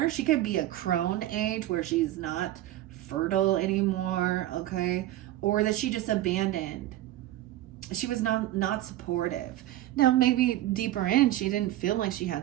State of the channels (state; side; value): quieter; left; 14.4 dB